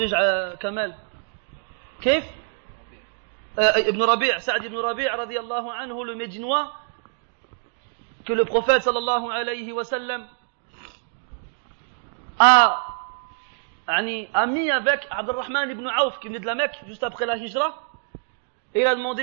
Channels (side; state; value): left; silent; digital silence